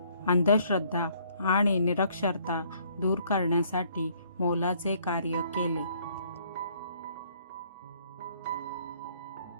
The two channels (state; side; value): inverted; both; correlation -0.64